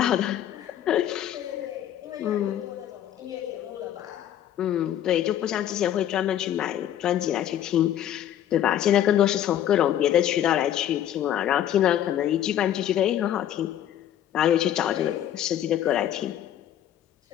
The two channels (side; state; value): right; quieter; 11.2 dB